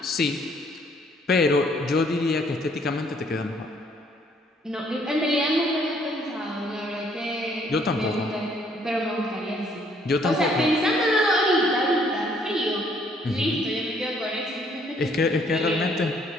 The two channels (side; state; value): both; normal; correlation 0.64